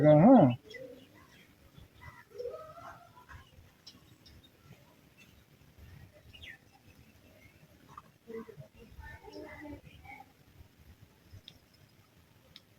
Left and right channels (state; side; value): identical; both; correlation 1.00